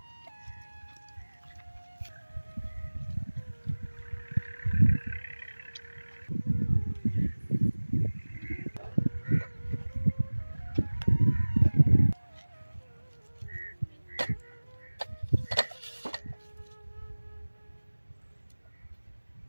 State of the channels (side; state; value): both; inverted; correlation -1.00